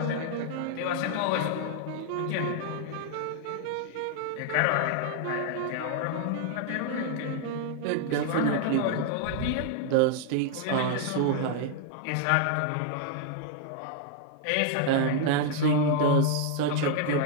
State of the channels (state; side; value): different; both; correlation 0.00